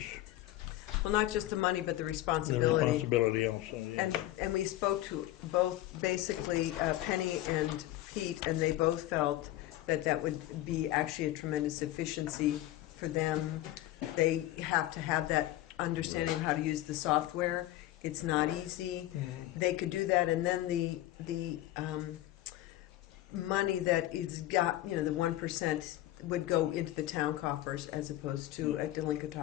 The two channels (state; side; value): quieter; right; 15.1 dB